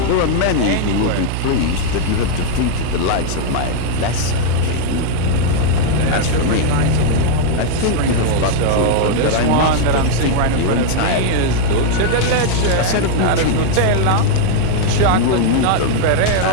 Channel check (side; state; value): both; different; correlation 0.00